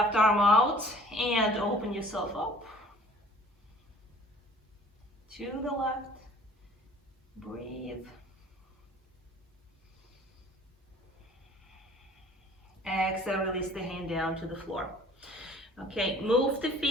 arm out and open yourself up. To the left. Breathe. Exhale, release the hand down to the floor. Okay, move the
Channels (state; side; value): normal; both; correlation 0.51